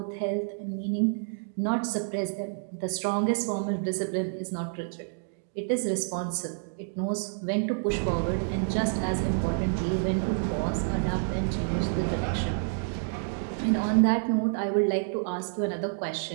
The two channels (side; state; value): left; silent; digital silence